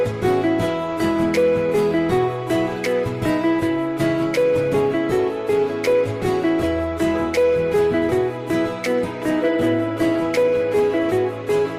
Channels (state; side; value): identical; both; correlation 1.00